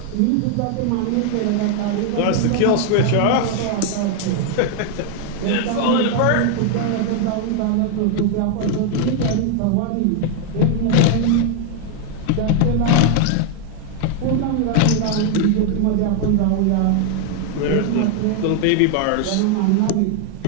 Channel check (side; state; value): both; different; correlation 0.00